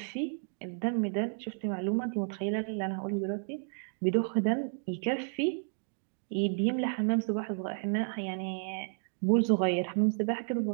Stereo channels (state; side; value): silent; left; digital silence